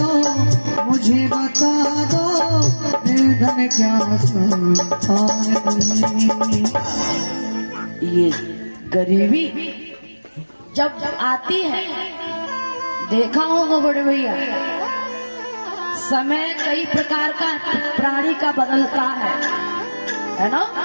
मुझे बता दो, निर्धन क्या संतान नहीं। ये गरीबी जब आती है, देखा होगा बड़े भैया, समय कई प्रकार का प्राणी का बदलता है ना।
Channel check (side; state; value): both; inverted; correlation -1.00